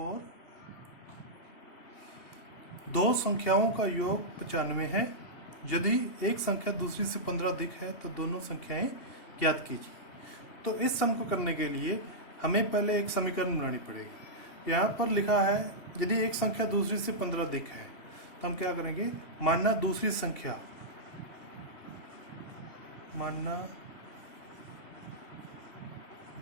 दो संख्याओं का योग 95 है। यदि एक संख्या दूसरी से 15 अधिक है तो दोनों संख्याएं ज्ञात कीजिए। तो इस सम को करने के लिए हमें पहले एक समीकरण बनानी पड़ेगी। यहाँ पर लिखा है यदि एक संख्या दूसरी से 15 अधिक है तो हम क्या करेंगे, मानना दूसरी संख्या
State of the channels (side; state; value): right; late; 2.8 ms